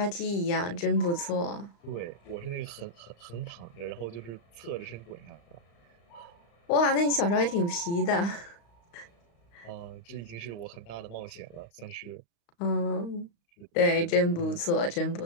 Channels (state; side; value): late; right; 35 ms